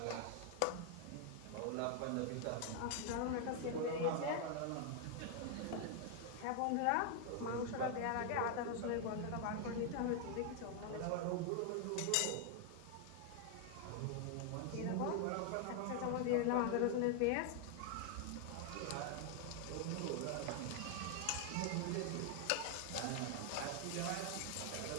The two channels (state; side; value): different; both; correlation 0.00